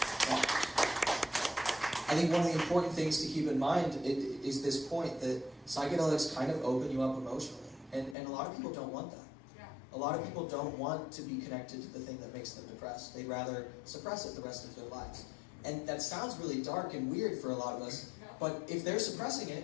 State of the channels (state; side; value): drops out; right; at 8.2 s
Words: the important things to keep in mind is this point that psychedelics kind of open you up emotionally, and a lot of people don't want that. A lot of people don't want to be connected to the thing that makes them depressed. They'd rather suppress it the rest of their lives. And that sounds really dark and weird for a lot of us, but if they're suppressing